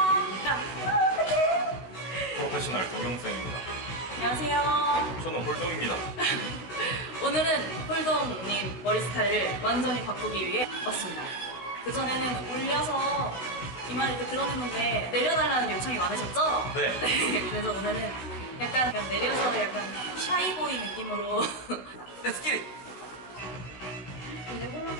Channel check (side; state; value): right; late; 16 ms